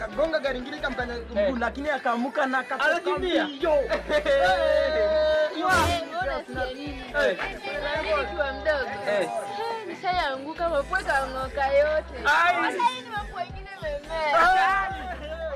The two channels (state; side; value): identical; both; correlation 1.00